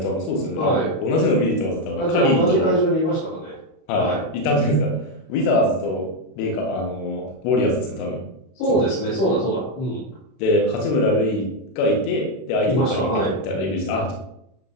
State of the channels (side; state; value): right; late; 32 ms